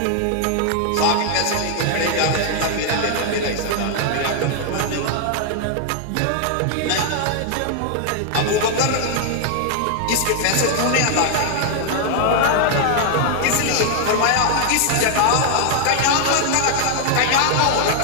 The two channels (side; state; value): both; different; correlation 0.00